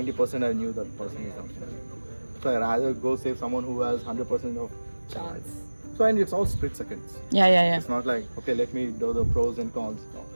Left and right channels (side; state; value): both; inverted; correlation -1.00